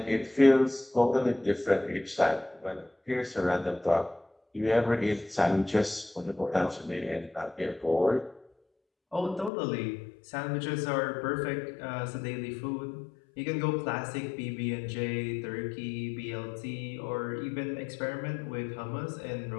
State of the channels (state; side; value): drops out; right; at 9.5 s